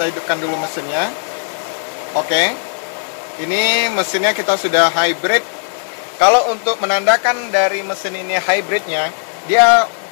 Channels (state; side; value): silent; right; digital silence